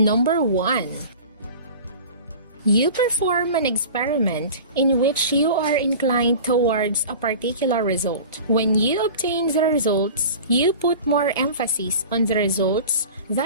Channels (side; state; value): both; inverted; correlation -0.38